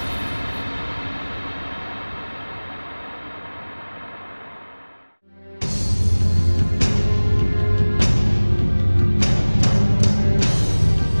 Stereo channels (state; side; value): inverted; both; correlation -1.00